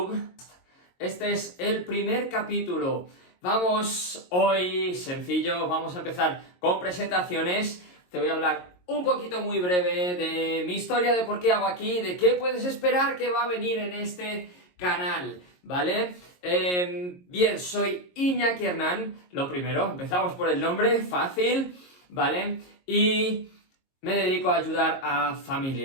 Este es el primer capítulo. Vamos hoy, sencillo, vamos a empezar con presentaciones. Te voy a hablar un poquito muy breve de mi historia, de por qué hago aquí, de qué puedes esperar que va a venir en este canal, ¿vale? Bien, soy Iñaki Hernán, lo primero, empezamos por el nombre, fácil, ¿vale? Y me dedico a ayudar a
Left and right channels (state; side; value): late; right; 22 ms